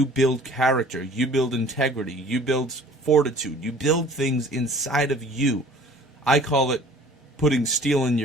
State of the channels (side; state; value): both; normal; correlation 0.49